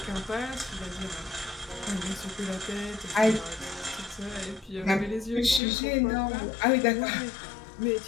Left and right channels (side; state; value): right; drops out; at 5.6 s